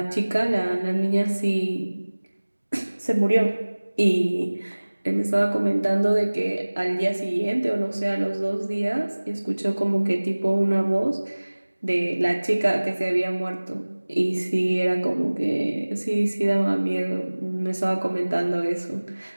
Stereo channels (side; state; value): both; inverted; correlation -1.00